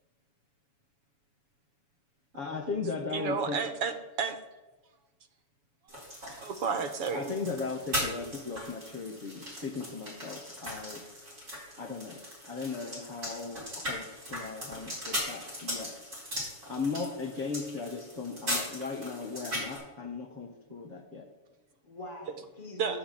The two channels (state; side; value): late; left; 7.1 ms